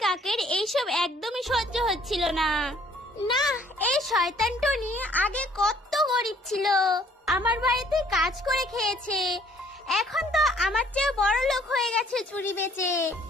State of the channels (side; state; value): both; normal; correlation 0.60